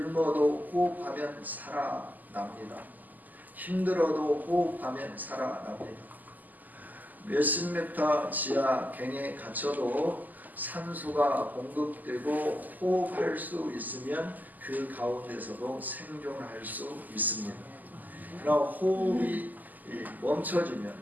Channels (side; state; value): left; late; 0.083 ms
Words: 호흡하면 살아납니다. 힘들어도 호흡하면 살아납니다. 몇십 미터 지하 갱에 갇혀도 산소가 공급되고 호흡할 수 있으면 그 가운데서도 생존할 수 있습니다. 그러나 호흡이 멈춰지면